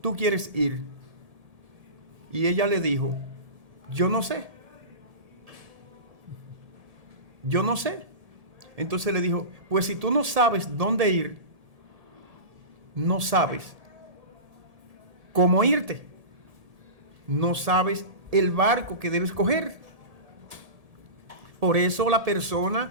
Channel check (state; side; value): late; left; 1.7 ms